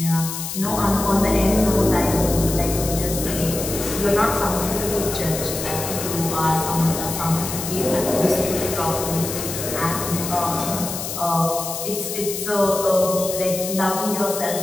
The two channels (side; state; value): left; noise; hiss, 6 dB below the sound